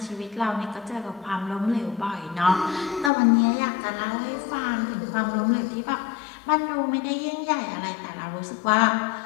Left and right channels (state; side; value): drops out; right; at 3.1 s